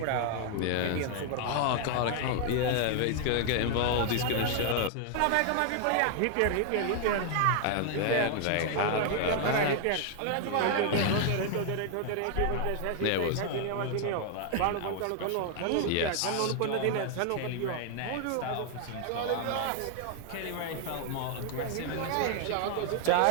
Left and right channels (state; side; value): different; both; correlation 0.00